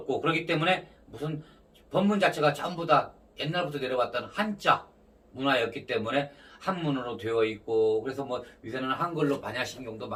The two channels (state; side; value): identical; both; correlation 1.00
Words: 그렇기 때문에 무슨 법문 자체가 전부 다 옛날부터 내려왔던 한자 문화였기 때문에 한문으로 되어 있고, 그래서 뭐 요새는 한글로 반야신경도